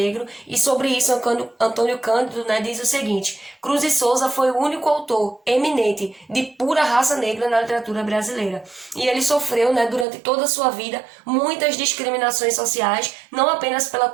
e sobre isso Antônio Cândido diz o seguinte: Cruz e Souza foi o único autor eminente de pura raça negra na literatura brasileira. E ele sofreu, durante toda a sua vida, muitas discriminações sociais, não apenas pela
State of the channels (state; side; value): drops out; left; at 10.1 s